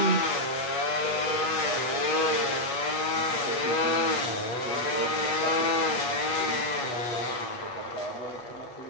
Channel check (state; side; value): late; right; 8.2 ms